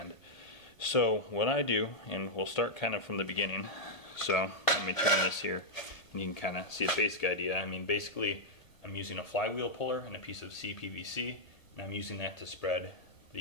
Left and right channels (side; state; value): right; late; 1.5 ms